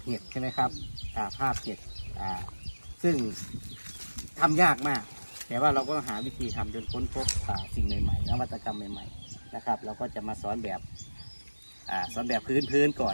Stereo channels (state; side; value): inverted; both; correlation -1.00